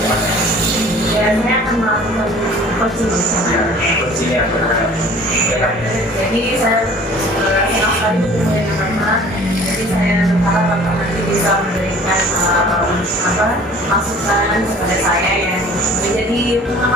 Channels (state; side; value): normal; both; correlation 0.48